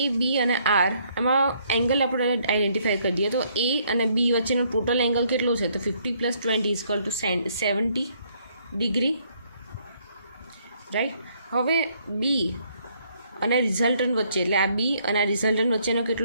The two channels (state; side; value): inverted; both; correlation -0.68